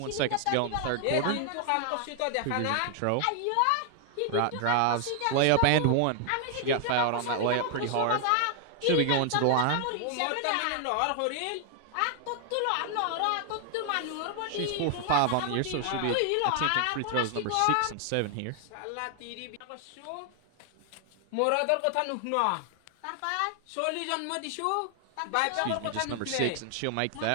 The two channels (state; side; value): different; both; correlation 0.00